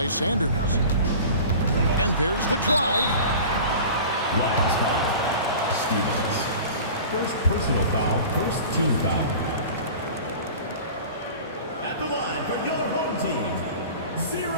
Sanders. And there's the drive. Last foul, Stevens. First personal foul, first team foul. At the line for your home team,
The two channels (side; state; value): both; inverted; correlation -0.38